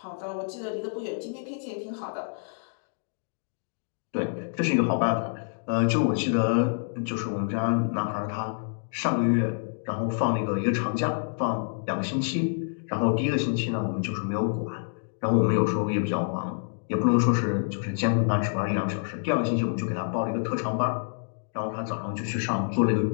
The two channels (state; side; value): silent; right; digital silence